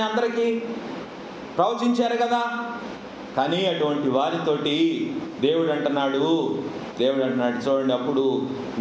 అందరికీ ప్రవచించారు కదా. కానీ అటువంటి వారితోటి దేవుడు అంటున్నాడు చూడండి, అప్పుడు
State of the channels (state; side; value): identical; both; correlation 1.00